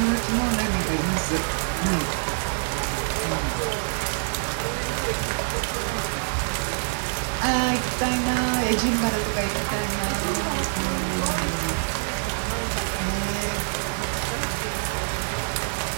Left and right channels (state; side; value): silent; left; digital silence